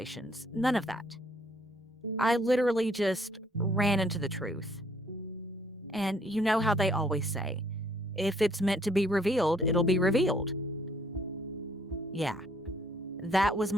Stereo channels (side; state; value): both; normal; correlation 0.64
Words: None of that. I literally just ran into the truth. And you know how they always say, if it's meant to be revealed, it'll be revealed. Yeah, that was